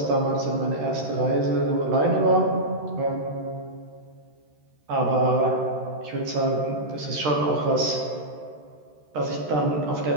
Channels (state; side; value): late; left; 13 ms